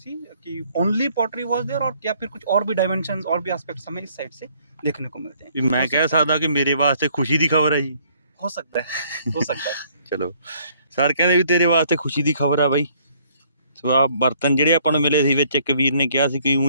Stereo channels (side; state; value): both; inverted; correlation -0.63